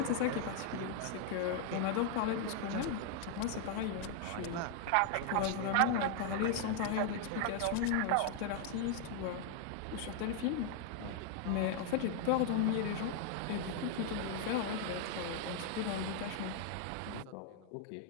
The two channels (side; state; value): both; different; correlation 0.00